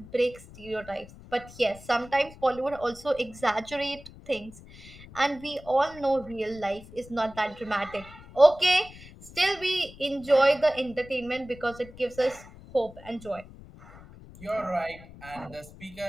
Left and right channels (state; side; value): noise; left; rumble, 19 dB below the sound